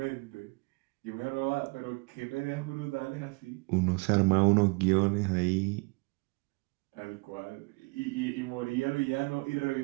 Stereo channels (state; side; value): quieter; left; 29.3 dB